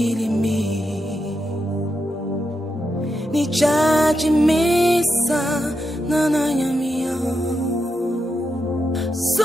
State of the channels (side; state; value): both; normal; correlation 0.85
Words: Nichachi misa nananyamio.